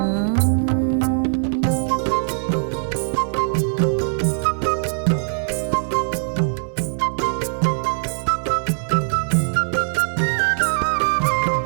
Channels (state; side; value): silent; left; digital silence